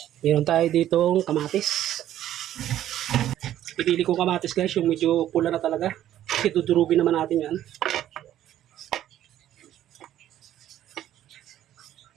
Meron tayo ditong kamatis. Pipili ko kamatis guys. Yung medyo pula na talaga. Kasi dudurugin naman natin yan.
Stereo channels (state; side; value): quieter; left; 12.1 dB